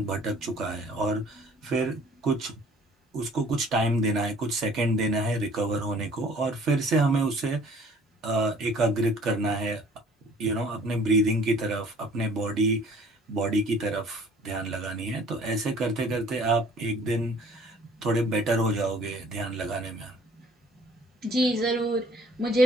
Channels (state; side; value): normal; both; correlation 0.53